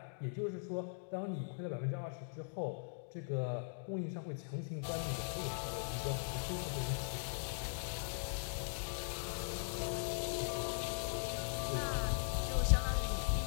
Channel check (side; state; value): right; silent; digital silence